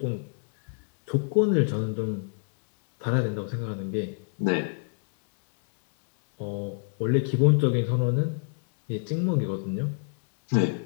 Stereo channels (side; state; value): right; silent; 59 dB below the other